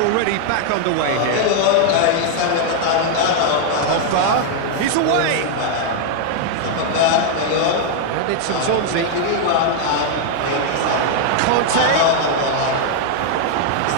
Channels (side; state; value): both; different; correlation -0.01